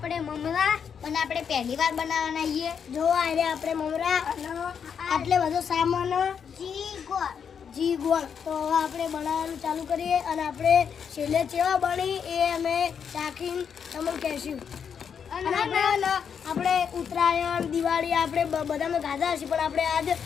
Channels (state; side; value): quieter; right; 7.2 dB